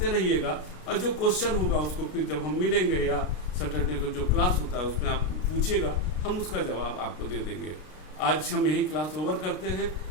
रहिएगा। और जो क्वेश्चन होगा उसको फिर जब हम मिलेंगे या सैटरडे को जो क्लास होता है उसमें आप पूछिएगा, हम उसका जवाब आपको दे देंगे। आज हम यही क्लास ओवर करते हैं।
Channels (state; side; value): late; right; 33 ms